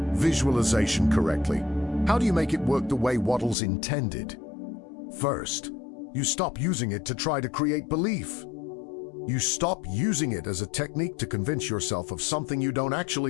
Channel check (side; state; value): right; drops out; at 3.6 s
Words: visualization correctly? How do you make it work the way Wattles intended? First, you stop using it to try to create belief. You stop using it as a technique to convince yourself of something you don't